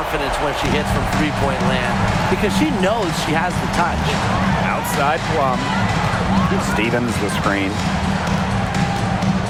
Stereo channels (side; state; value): both; identical; correlation 1.00